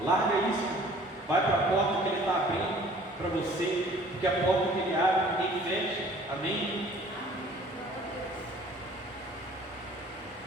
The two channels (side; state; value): both; normal; correlation 0.52